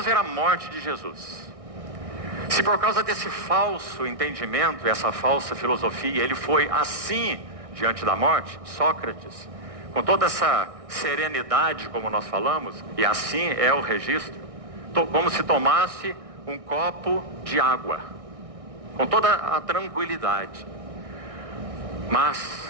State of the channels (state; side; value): late; left; 1.6 ms